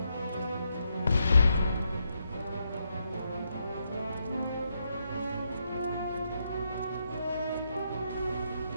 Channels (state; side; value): inverted; both; correlation -0.80